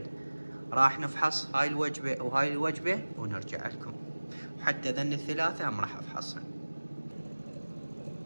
راح نفحص هاي الوجبة وهاي الوجبة ونرجع لكم، وحتى ذن الثلاثة هم راح افحصن.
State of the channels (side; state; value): both; inverted; correlation -1.00